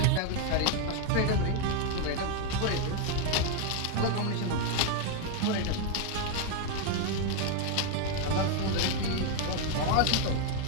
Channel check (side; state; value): both; different; correlation 0.01